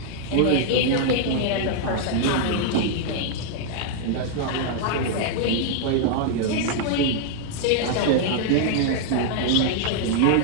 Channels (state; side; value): different; both; correlation -0.01